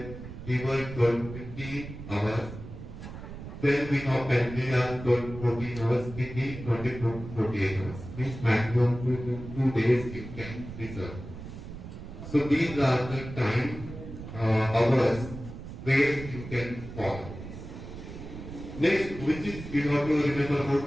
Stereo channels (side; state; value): right; noise; rumble, 11 dB below the sound